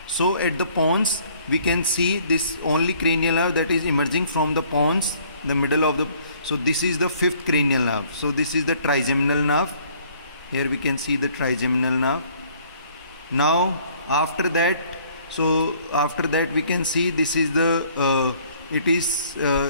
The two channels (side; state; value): both; inverted; correlation -0.59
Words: So at the pons we can see this only cranial nerve that is emerging from the pons, the middle of the. So this is the fifth cranial nerve. So this is the trigeminal nerve. Here we can see the trigeminal nerve. Now after that we can see this is the